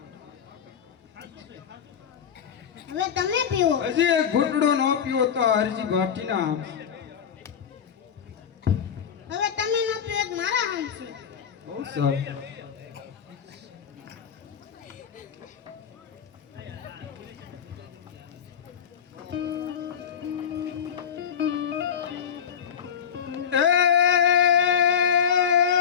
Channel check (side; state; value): right; quieter; 7.8 dB